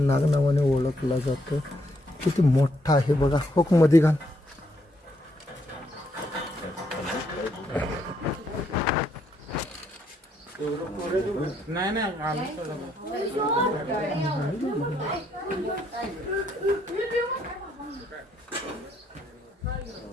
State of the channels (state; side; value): normal; both; correlation 0.74